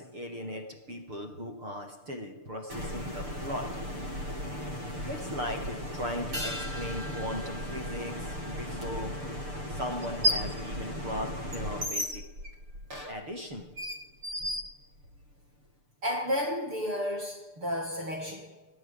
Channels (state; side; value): late; left; 6.8 ms